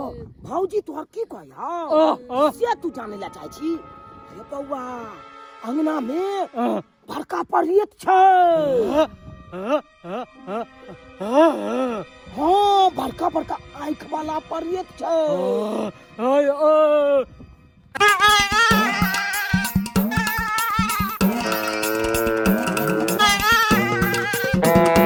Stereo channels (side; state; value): both; identical; correlation 1.00